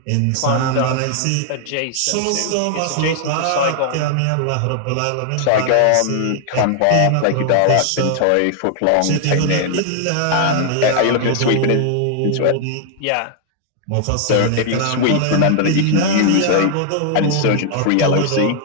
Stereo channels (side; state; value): both; different; correlation 0.00